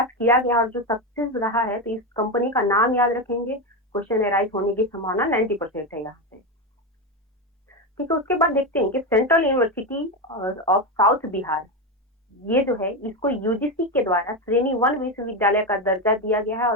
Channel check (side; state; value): both; normal; correlation 0.13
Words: किया गया और जो सक्सेस रहा है, तो इस कंपनी का नाम याद रखेंगे, क्वेश्चन एराइज होने की संभावना 90% है यहाँ से। ठीक है, उसके बाद देखते हैं कि central university of south Bihar, ये जो है इसको यूजीसी के द्वारा श्रेणी 1 विश्वविद्यालय का दर्जा दिया गया है